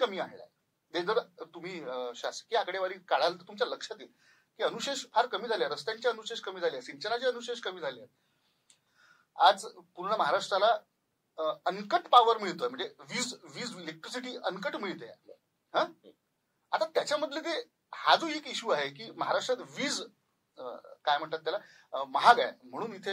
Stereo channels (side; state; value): both; identical; correlation 1.00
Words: आणलाय. ते जर तुम्ही शासकीय आकडेवारी काढाल तर तुमच्या लक्षात येईल की अनुशेष फार कमी झाले, रस्त्यांचे अनुशेष कमी झाले, सिंचनाचे अनुशेष कमी झाले. आज पूर्ण महाराष्ट्राला अनकट पॉवर मिळतोय, म्हणजे वीज इलेक्ट्रिसिटी अनकट मिळते. आता त्याच्यामधले ते हा जो एक इश्यू आहे की महाराष्ट्रात वीज काय म्हणतात त्याला महाग आहे म्हणून